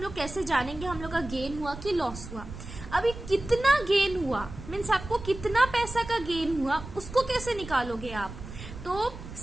लोग कैसे जानेंगे हम लोग का गेन हुआ कि लॉस हुआ। अभी कितना गेन हुआ मीन्स आपको कितना पैसा का गेन हुआ, उसको कैसे निकालोगे आप। तो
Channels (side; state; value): right; noise; rumble, 12 dB below the sound